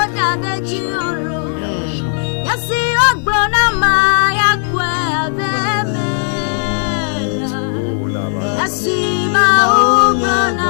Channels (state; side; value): silent; right; 59 dB below the other